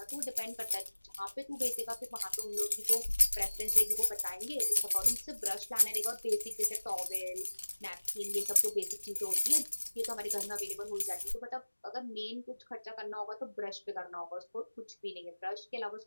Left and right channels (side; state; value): both; inverted; correlation -1.00